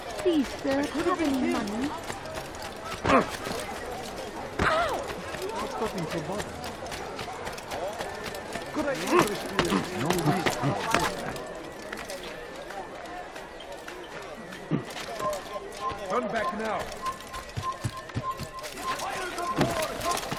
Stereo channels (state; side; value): identical; both; correlation 1.00